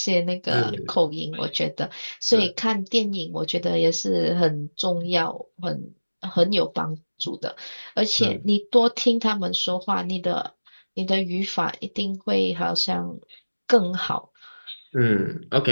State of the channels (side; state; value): both; inverted; correlation -1.00